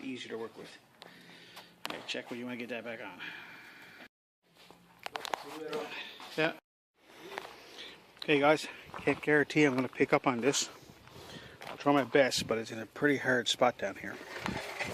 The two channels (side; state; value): both; identical; correlation 1.00